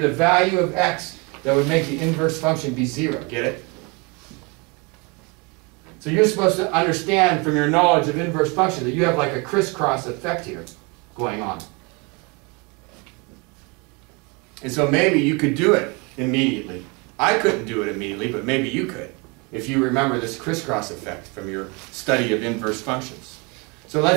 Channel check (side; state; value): left; quieter; 29.7 dB